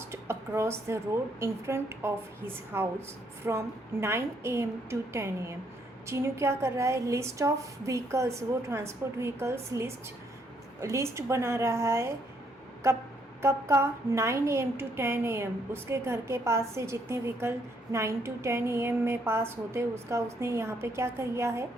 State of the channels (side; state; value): both; normal; correlation 0.71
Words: across the road in front of his house from 9 AM to 10 AM। Chinu क्या कर रहा है, list of vehicles, वो transport vehicles list बना रहा है। कब कब का, 9 AM to 10 AM। उसके घर के पास से जितने व्हीकल 9 to 10 AM में पास होते उसका उसने यहाँ पे क्या किया है,